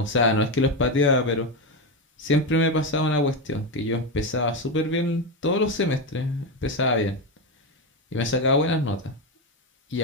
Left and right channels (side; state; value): both; normal; correlation 0.12